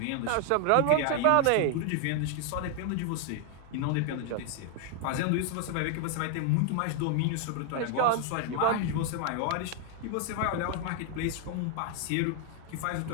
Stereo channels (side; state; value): both; different; correlation 0.00